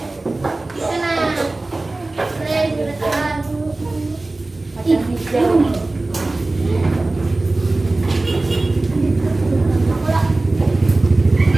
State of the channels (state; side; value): quieter; left; 3.0 dB